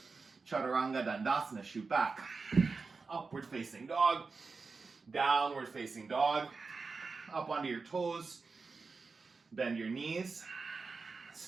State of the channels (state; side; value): quieter; left; 4.4 dB